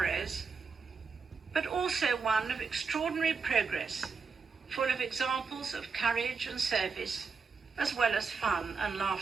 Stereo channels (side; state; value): left; quieter; 5.1 dB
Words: but also one of extraordinary progress, full of examples of courage and service, as well as fun and